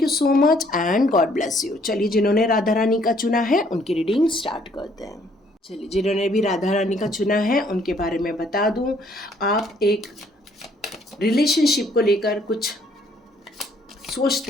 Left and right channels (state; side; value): normal; both; correlation 0.64